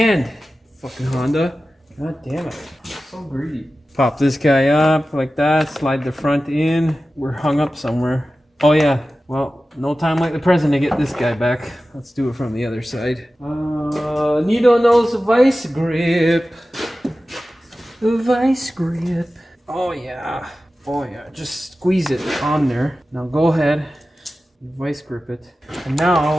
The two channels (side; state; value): both; normal; correlation 0.95